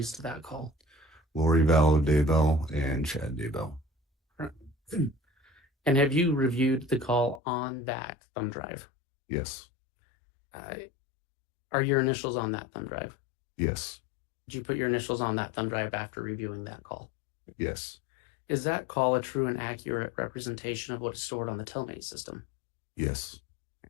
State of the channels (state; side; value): drops out; right; at 7.4 s